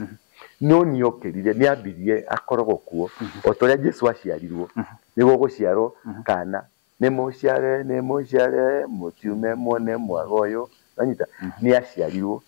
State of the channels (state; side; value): silent; right; 60 dB below the other